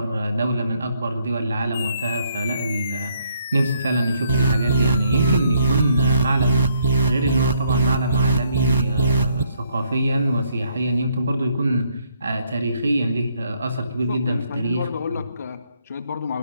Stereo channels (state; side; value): inverted; both; correlation -0.70